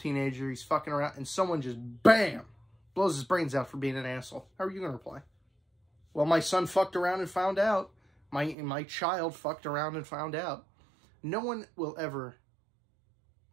he's fucking around, and someone just, BAM! Blows his brains out for being an asshole. How are you going to reply? Well, my son fucked around and found out. My child fucked around and found out. No one will ever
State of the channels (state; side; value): drops out; left; at 8.6 s